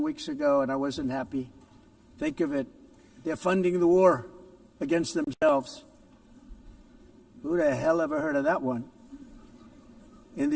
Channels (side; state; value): both; identical; correlation 1.00